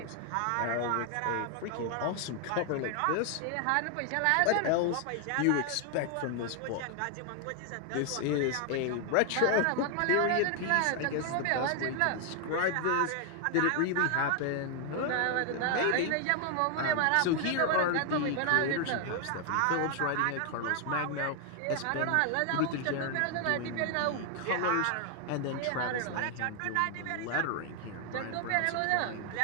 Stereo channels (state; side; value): different; both; correlation 0.00